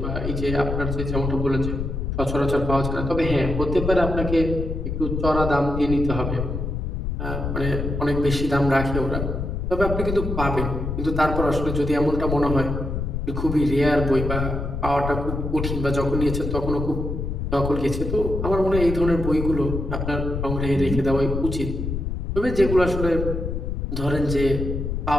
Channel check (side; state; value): left; noise; rumble, 3 dB below the sound